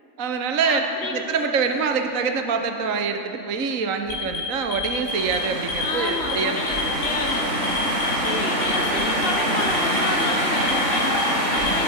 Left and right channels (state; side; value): late; left; 3.5 ms